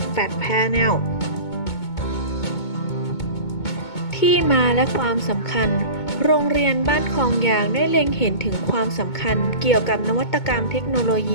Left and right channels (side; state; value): right; late; 2.2 ms